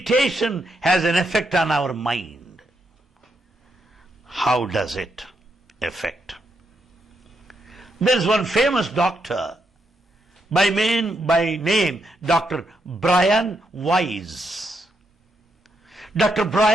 has an effect on our mind. How does it affect? There's one famous doctor by name Dr. Brian Weiss. Dr.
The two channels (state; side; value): normal; both; correlation 0.80